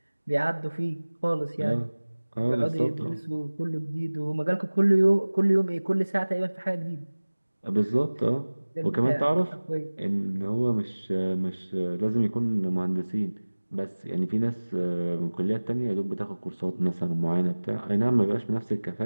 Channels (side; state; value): both; inverted; correlation -1.00